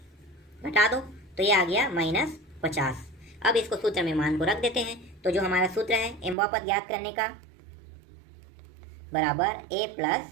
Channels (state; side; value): drops out; left; at 6.4 s